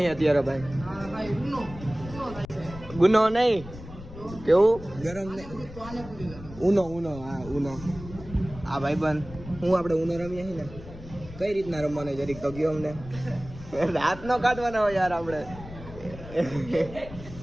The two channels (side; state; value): left; noise; rumble, 14 dB below the sound